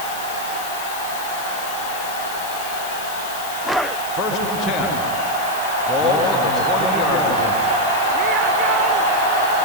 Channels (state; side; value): noise; left; hiss, 10 dB below the sound